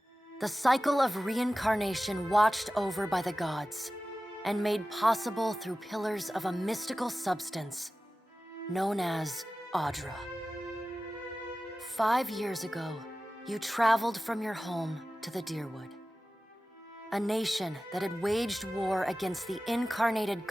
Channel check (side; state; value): both; normal; correlation 0.95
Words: The cycle of reincarnation watched over by the gods, and made possible through pillars of a mystical substance known as Audra. 5 years ago, you traveled from your home to the Deerwood, a nation that had waged war against the incarnated